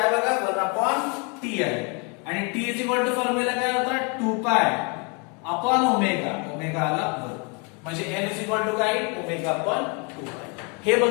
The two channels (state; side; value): quieter; right; 33.4 dB